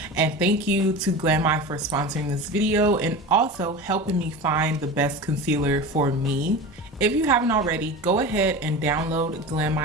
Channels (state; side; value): normal; both; correlation 0.30